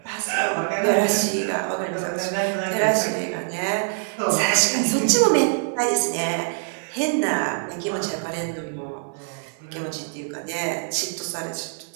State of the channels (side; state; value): left; silent; 56 dB below the other